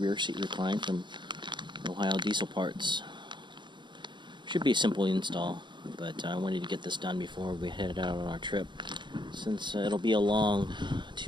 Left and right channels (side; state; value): left; late; 0.22 ms